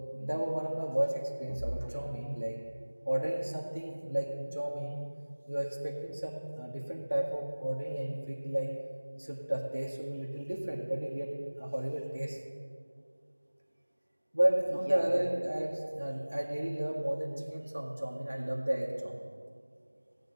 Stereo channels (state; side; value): inverted; both; correlation -1.00